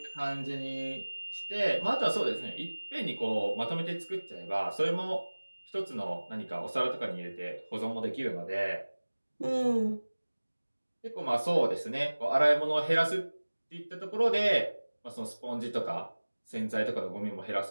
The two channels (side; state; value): both; inverted; correlation -1.00